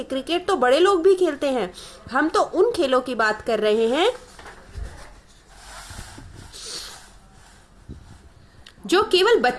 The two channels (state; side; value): identical; both; correlation 1.00